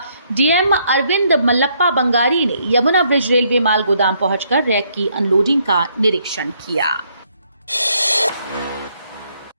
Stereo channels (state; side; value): inverted; both; correlation -0.70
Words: डीएम अरविंद मल्लप्पा बंगारी ने यमुना ब्रिज रेलवे माल गोदाम पहुंचकर रैक की अनलोडिंग का निरीक्षण किया।